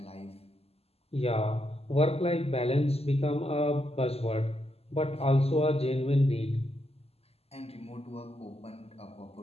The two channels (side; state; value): right; late; 0.29 ms